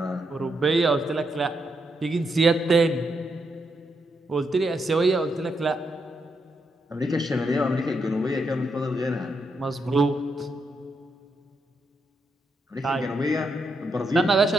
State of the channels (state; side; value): normal; both; correlation 0.81